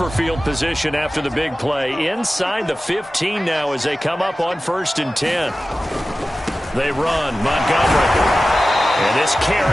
field position after the big play? Inside the 15 now as they come up on 1st and 10. They run. Montgomery. And this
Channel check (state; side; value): normal; both; correlation 0.95